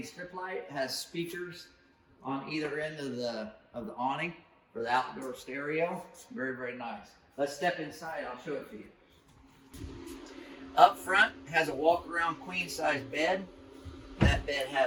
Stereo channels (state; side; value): identical; both; correlation 1.00